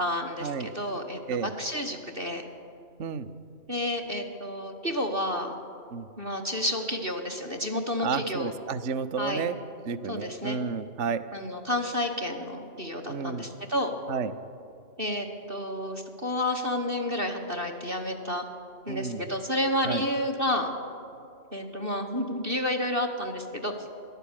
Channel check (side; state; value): left; late; 2.6 ms